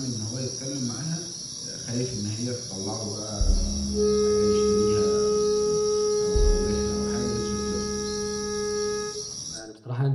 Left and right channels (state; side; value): identical; both; correlation 1.00